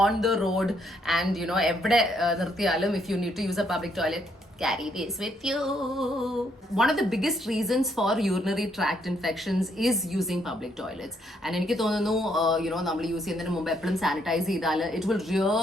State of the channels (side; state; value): both; normal; correlation 0.72